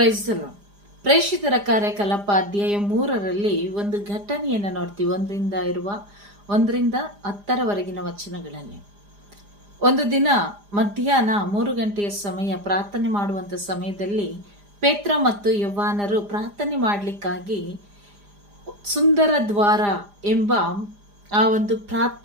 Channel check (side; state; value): left; late; 4.9 ms